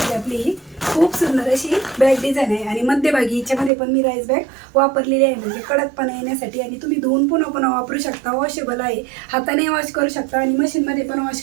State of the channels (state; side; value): drops out; left; at 3.7 s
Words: आपली ही खूप सुंदर अशी बॅग डिझाईन आहे. आणि मध्यभागी हिच्यामध्ये पण मी राईस बॅग वापरलेली आहे, म्हणजे कडकपणा येण्यासाठी. आणि तुम्ही धुवून पुन्हा पुन्हा वापरू शकता, वॉशेबल आहे, हाताने वॉश करू शकता आणि मशीनमध्ये पण वॉश